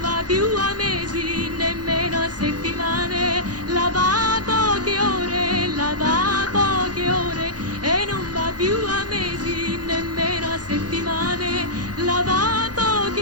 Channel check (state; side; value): late; left; 0.69 ms